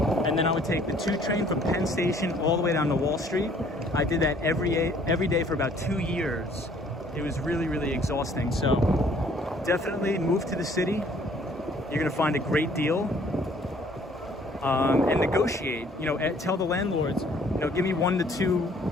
and then I would take the 2 train from Penn Station all the way down to Wall Street. I did that every day for about 2 years. It was really, really exhausting. So definitely move to the city. You're gonna find a great deal. And negotiate, you know, tell the landlords, you know, give me 1 to 2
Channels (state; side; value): normal; both; correlation 0.59